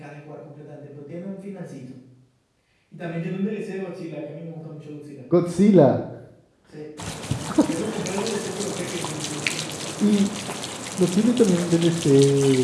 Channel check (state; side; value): identical; both; correlation 1.00